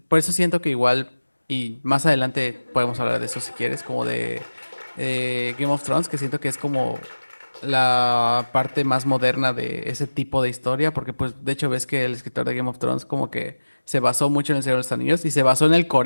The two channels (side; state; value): both; inverted; correlation -1.00